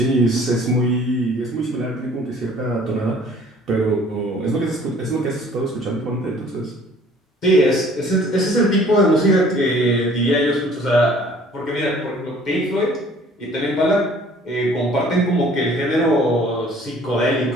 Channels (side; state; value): both; normal; correlation 0.54